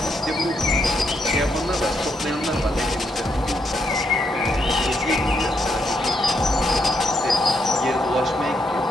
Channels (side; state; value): both; normal; correlation 0.77